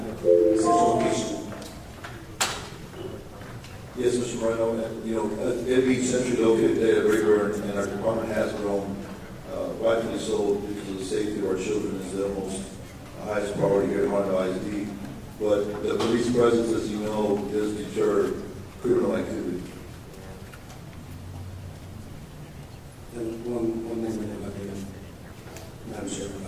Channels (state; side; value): identical; both; correlation 1.00